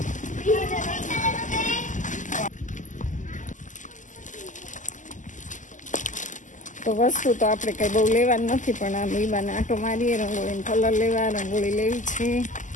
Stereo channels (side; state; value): right; late; 0.37 ms